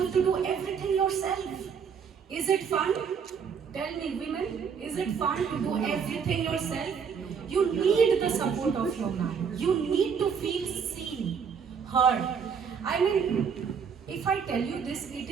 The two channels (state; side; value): quieter; left; 6.6 dB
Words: have to do everything yourself. Is it fun? Tell me, women, is it fun to do everything yourself? You need the support of your man. You need to feel seen, heard. I mean, if I tell you this, it